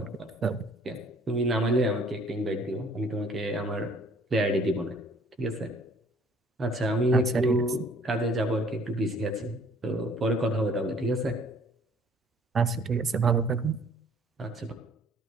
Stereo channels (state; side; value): normal; both; correlation 0.57